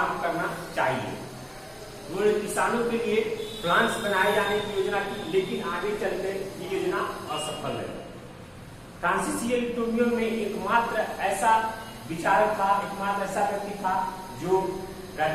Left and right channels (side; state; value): both; identical; correlation 1.00